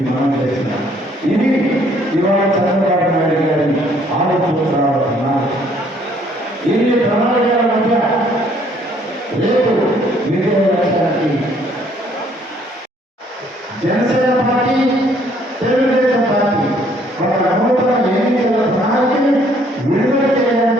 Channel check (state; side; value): normal; both; correlation 0.63